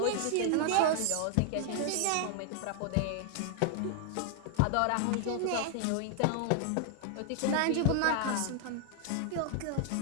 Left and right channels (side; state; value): both; different; correlation 0.00